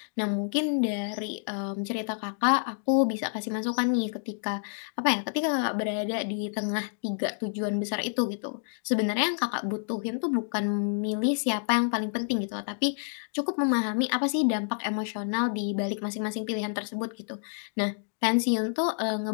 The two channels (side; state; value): right; silent; digital silence